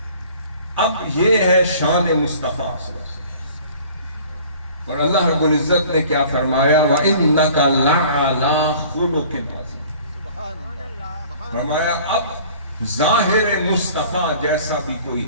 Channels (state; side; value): inverted; both; correlation -0.49